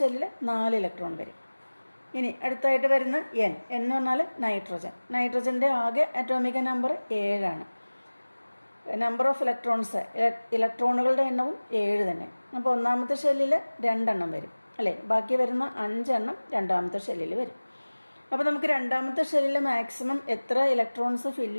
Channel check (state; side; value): inverted; both; correlation -1.00